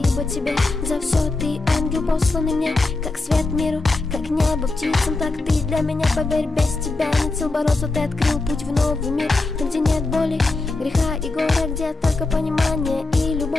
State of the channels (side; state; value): right; quieter; 3.2 dB